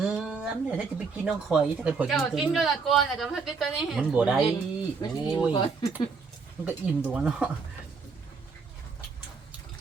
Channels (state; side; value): quieter; left; 4.9 dB